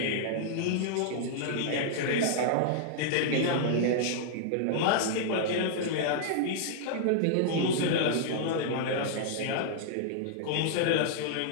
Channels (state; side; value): different; both; correlation -0.01